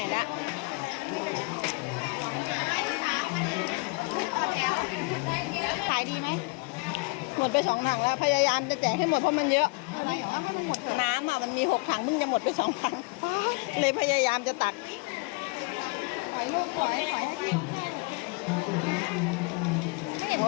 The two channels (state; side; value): quieter; right; 28.4 dB